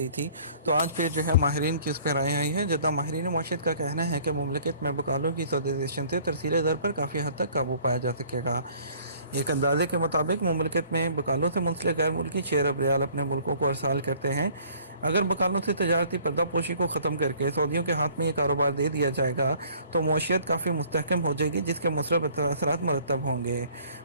تھی، تو آج پھر جو ہے ماہرین کی اس پہ رائے آئی ہے۔ جدہ ماہرین معیشت کا کہنا ہے کہ مملکت میں بکالوں کی سودائزیشن سے ترسیل زر پر کافی حد تک قابو پایا جا سکے گا۔ ایک اندازے کے مطابق مملکت میں بکالوں سے منسلک غیر ملکی 6 ارب ریال اپنے ملکوں کو ارسال کرتے ہیں۔ اگر بکالوں سے تجارتی پردہ پوشی کو ختم کر کے سعودیوں کے ہاتھ میں یہ کاروبار دے دیا جائے گا تو معیشت کافی مستحکم ہو جائے گی، جس کے مثبت اثرات مرتب ہوں گے۔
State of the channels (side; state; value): both; inverted; correlation -0.55